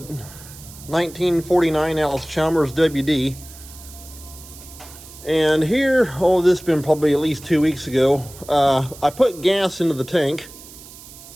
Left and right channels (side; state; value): right; noise; hiss, 18 dB below the sound